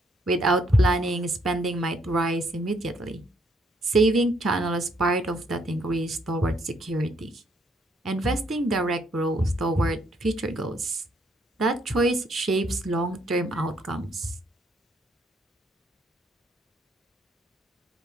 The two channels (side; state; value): both; normal; correlation 0.70